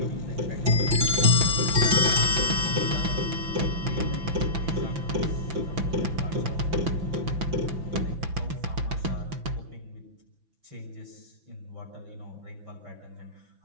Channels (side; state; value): left; late; 5.9 ms